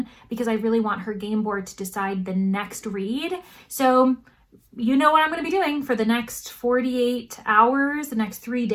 because I really want her game board to decide the next read. So you know what I'm going to be doing for the next 48 hours, the next 3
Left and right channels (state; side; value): identical; both; correlation 1.00